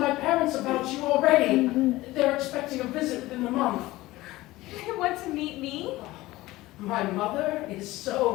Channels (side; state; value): right; quieter; 18.2 dB